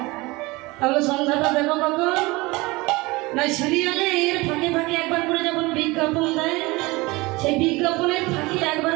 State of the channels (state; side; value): quieter; left; 22.8 dB